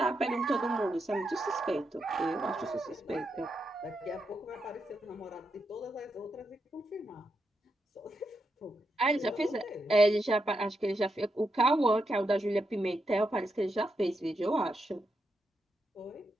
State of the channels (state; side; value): normal; both; correlation 0.84